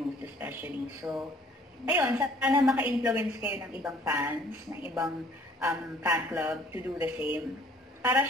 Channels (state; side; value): normal; both; correlation 0.57